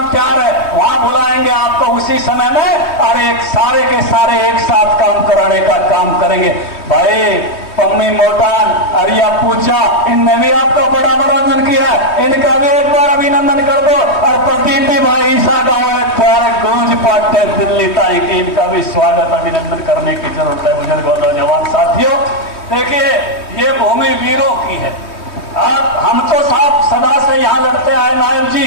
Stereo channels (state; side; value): late; right; 3.2 ms